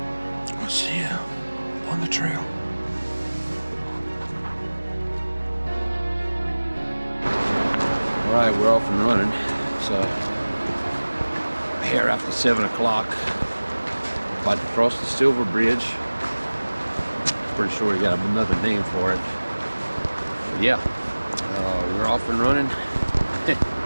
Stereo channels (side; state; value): both; inverted; correlation -1.00